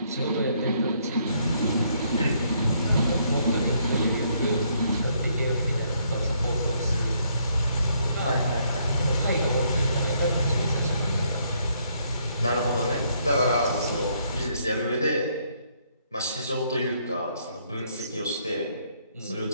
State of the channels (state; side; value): inverted; both; correlation -0.70